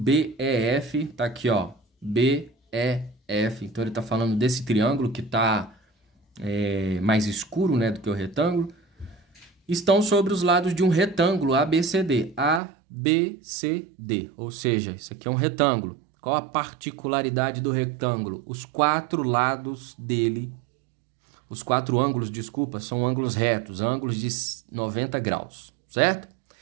tá aqui, ó, BEF. Então ele tá falando desse triângulo que tá mais escuro, né, do que o retângulo. Estão sobre os lados de um retângulo ABCD. ABCD, ou seja, isso aqui é um retângulo. Qual a particularidade do retângulo? Os quatro lados dele, os quatro ângulos, desculpa, são ângulos retos, ângulos de 90 graus, certo?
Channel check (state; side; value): drops out; left; at 12.6 s